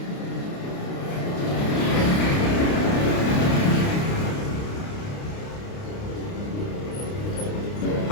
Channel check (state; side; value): late; right; 29 ms